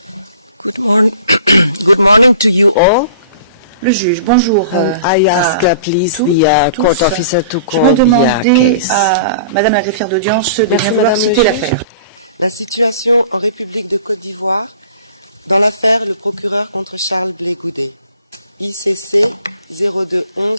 Good morning. Good morning to you all. Le juge, bonjour. I ask please the court officer to Je vais call the demander case. à Madame la greffière d'audience de Merci, bien vouloir Madame citer le l'affaire. La situation en République de Côte d'Ivoire dans l'affaire le procureur contre Charles Blé Goudet. ICC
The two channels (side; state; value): both; inverted; correlation -0.46